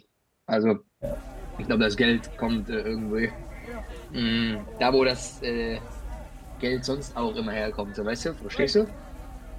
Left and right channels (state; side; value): identical; both; correlation 1.00